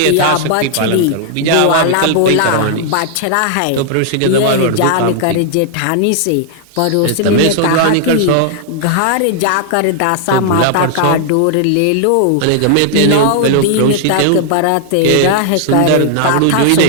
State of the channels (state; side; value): different; both; correlation 0.00